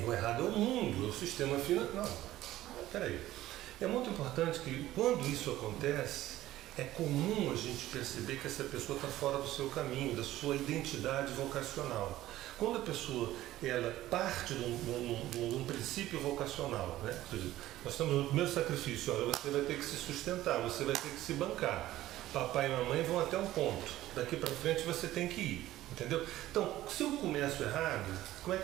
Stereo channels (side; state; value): left; quieter; 14.9 dB